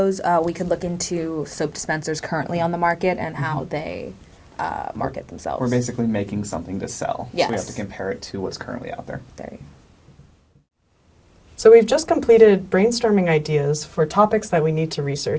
we could look into soap dispensers currently on the market and how they market themselves. We're basically making something to sell. So we have Yes. to compare it to what's currently out there. There. So we've just completed brainstorming ideas for topics that we need to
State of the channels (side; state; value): both; identical; correlation 1.00